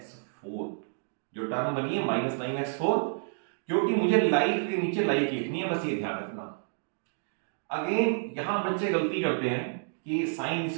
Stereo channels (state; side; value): silent; left; digital silence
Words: जो टर्म बनी है -9x4, क्योंकि मुझे लाइट के नीचे लाइट लिखनी है, बस ये ध्यान रखना। अगेन यहां बच्चे गलती करते हैं कि साइन